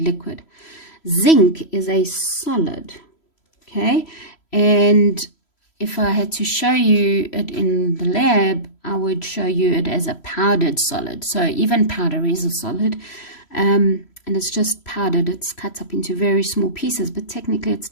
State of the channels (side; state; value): right; late; 3.0 ms